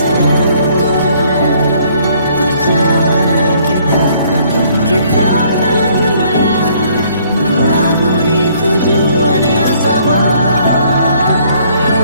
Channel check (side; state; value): both; inverted; correlation -0.63